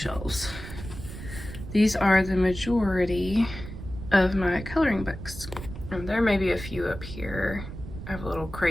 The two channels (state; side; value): noise; right; rumble, 11 dB below the sound